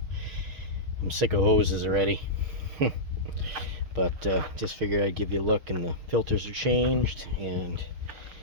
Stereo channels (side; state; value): left; late; 6.4 ms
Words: I'm sick of hoses already. But just figured I'd give you a look, and the filters are changed, and